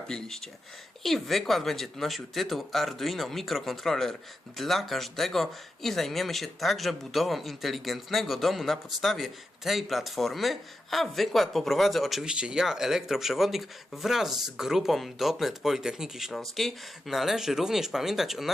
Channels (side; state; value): both; normal; correlation 0.89